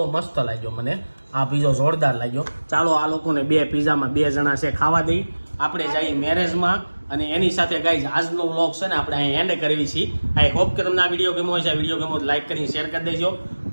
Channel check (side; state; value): both; inverted; correlation -1.00